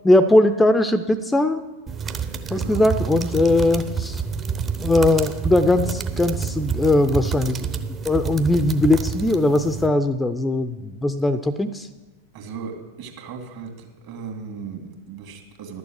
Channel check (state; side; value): normal; both; correlation 0.78